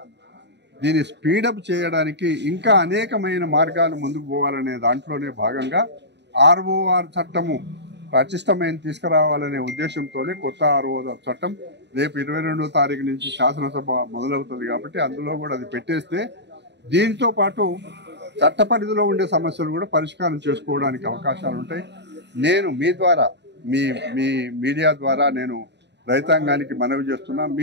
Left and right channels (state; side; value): late; left; 0.50 ms